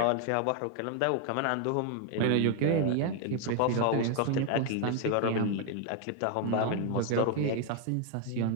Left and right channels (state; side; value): different; both; correlation 0.00